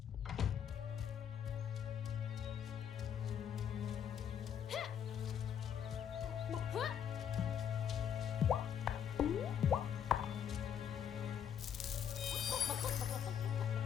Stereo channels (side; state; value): right; quieter; 8.7 dB